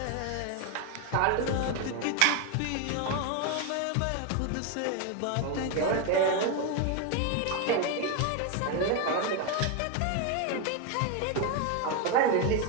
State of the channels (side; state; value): both; different; correlation 0.01